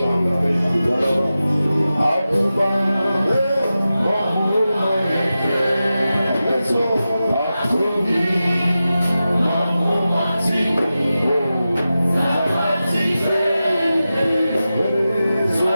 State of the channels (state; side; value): inverted; both; correlation -0.93